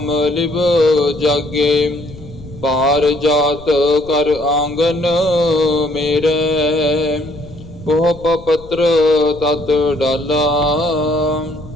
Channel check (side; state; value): left; noise; rumble, 18 dB below the sound